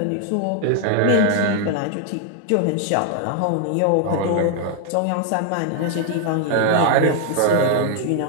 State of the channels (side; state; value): both; different; correlation 0.00